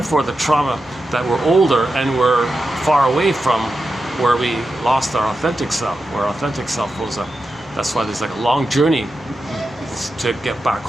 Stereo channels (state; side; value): normal; both; correlation 0.90